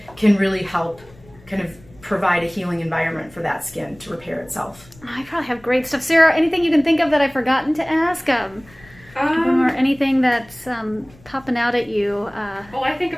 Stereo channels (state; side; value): noise; left; rumble, 25 dB below the sound